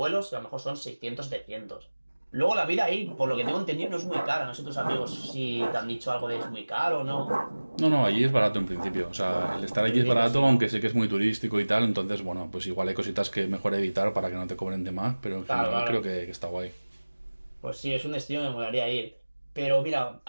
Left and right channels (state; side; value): inverted; both; correlation -1.00